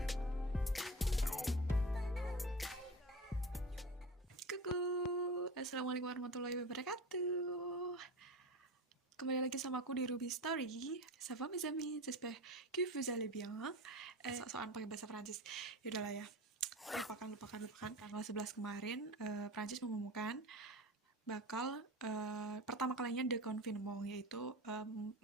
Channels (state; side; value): normal; both; correlation 0.30